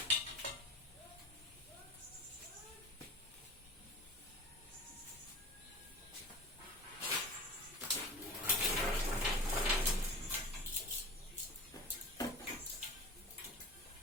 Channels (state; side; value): normal; both; correlation 0.34